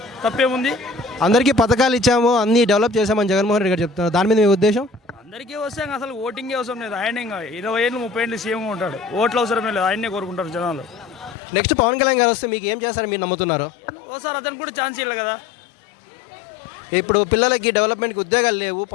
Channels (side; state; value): right; drops out; at 11.4 s